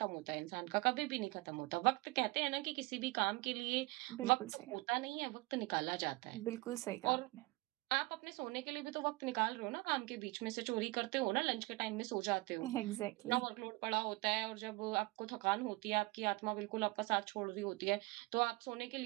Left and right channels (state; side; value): quieter; left; 23.1 dB